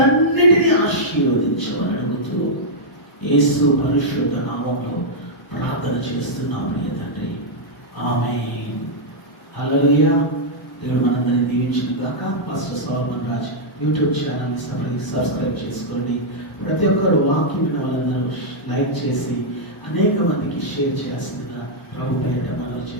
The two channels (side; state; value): both; normal; correlation -0.06